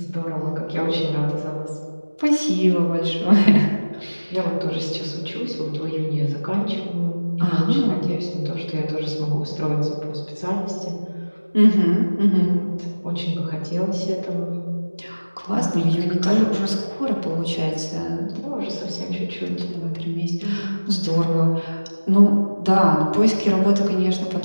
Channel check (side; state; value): both; inverted; correlation -1.00